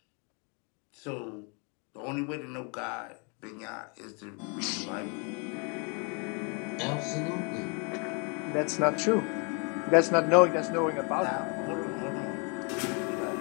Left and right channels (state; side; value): quieter; right; 35.0 dB